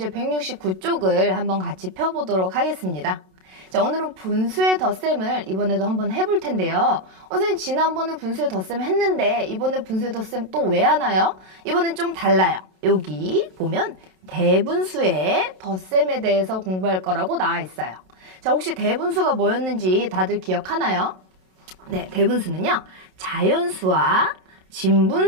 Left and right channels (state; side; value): late; left; 27 ms